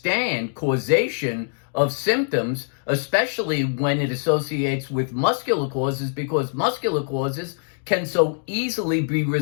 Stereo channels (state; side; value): silent; right; digital silence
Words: causation of symptoms, especially when it associates with muscular causes, because muscular causes can so easily be